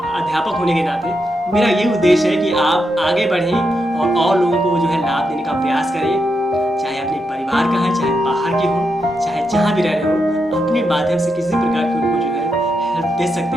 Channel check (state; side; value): normal; both; correlation 0.84